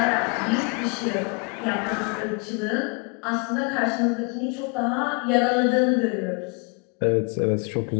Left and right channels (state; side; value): quieter; right; 33.9 dB